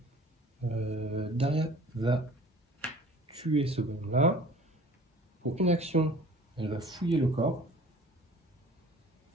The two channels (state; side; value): normal; both; correlation 0.48